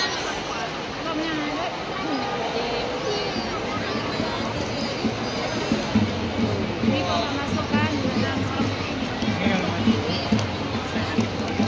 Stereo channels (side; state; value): both; identical; correlation 1.00